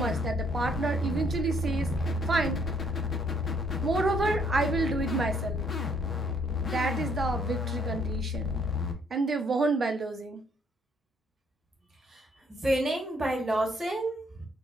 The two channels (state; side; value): normal; both; correlation 0.67